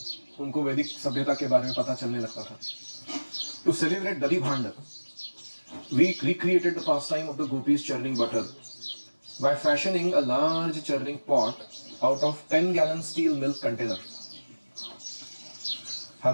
उनको वैदिक सभ्यता के बारे में पता चलने लगता था। टू सेलिब्रेट दधी भांड, we recreated the pastime of the gopis churning butter by fashioning a large churning pot out of 10-gallon steel milk container.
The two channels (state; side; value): inverted; both; correlation -1.00